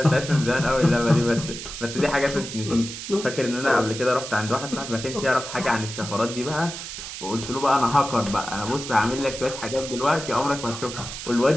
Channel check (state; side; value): noise; right; hiss, 9 dB below the sound